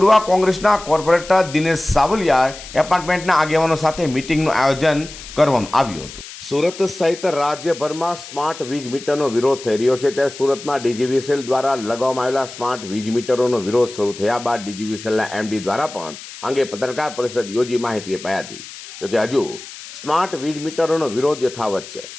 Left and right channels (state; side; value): noise; left; hiss, 14 dB below the sound